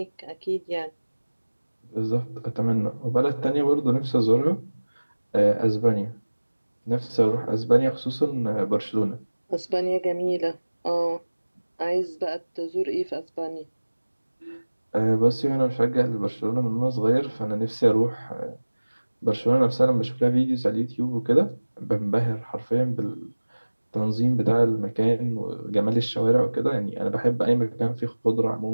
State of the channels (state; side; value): inverted; both; correlation -1.00